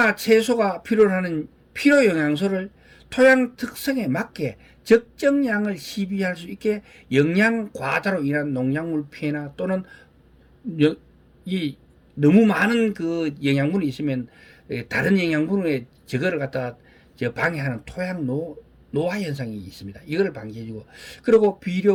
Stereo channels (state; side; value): identical; both; correlation 1.00